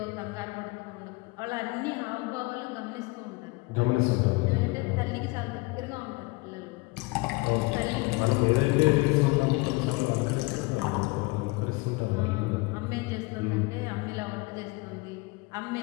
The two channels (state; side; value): quieter; right; 24.6 dB